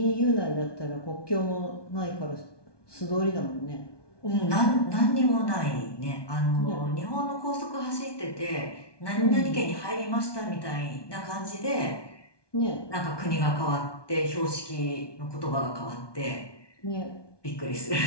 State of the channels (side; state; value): right; late; 1.2 ms